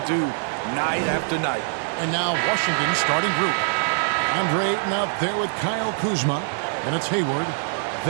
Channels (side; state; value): left; silent; digital silence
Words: do night after night. And now Washington's starting group. Andre Ayton out there with Kyle Kuzma, and it's Hayward.